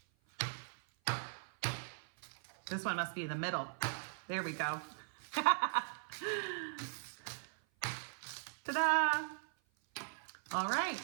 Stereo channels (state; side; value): silent; left; 51 dB below the other